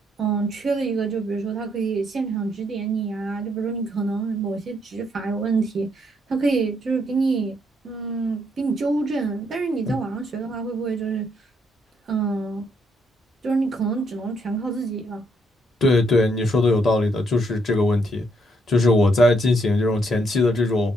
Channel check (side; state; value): both; normal; correlation 0.73